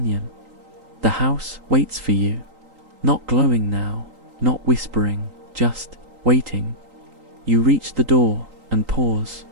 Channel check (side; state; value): left; late; 3.8 ms